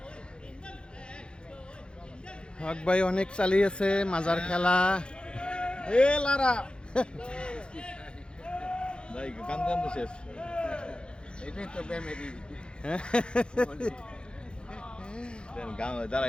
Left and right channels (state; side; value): late; right; 0.053 ms